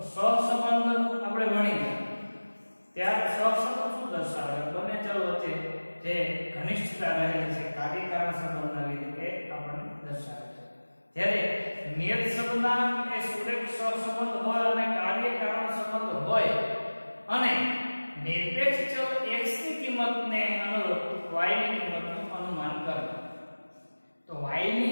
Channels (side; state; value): both; inverted; correlation -1.00